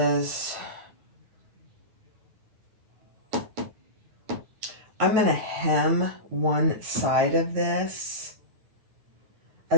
I'm going to hem one side of this,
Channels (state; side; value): late; left; 9.4 ms